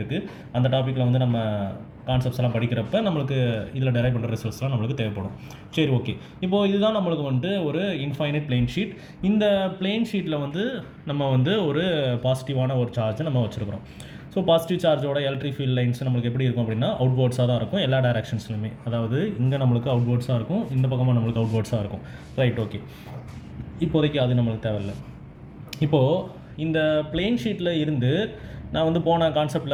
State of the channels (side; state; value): both; identical; correlation 1.00